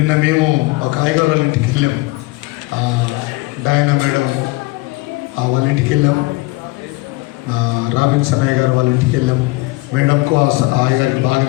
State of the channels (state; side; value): quieter; right; 22.1 dB